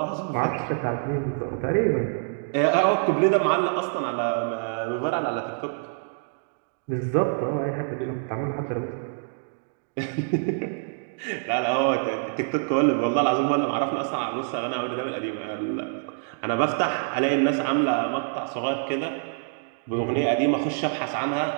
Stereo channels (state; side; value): silent; left; digital silence